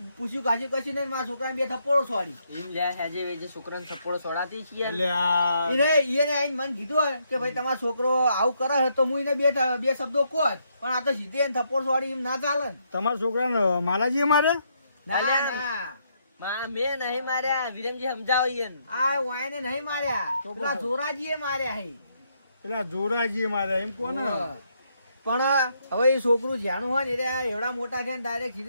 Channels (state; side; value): inverted; both; correlation -0.75